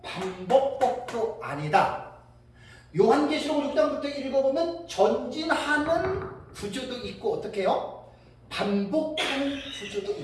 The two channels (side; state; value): both; identical; correlation 1.00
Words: 반복법도 아니다. 요한계시록 6장부터 읽어보면 전진하는 구조도 있고 어떻게 해요? 반복하는 구조도